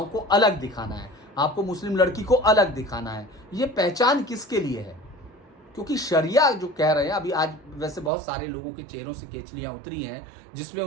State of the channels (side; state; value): left; drops out; at 8.1 s